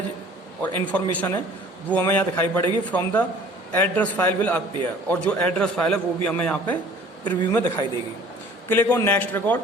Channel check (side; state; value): both; normal; correlation 0.50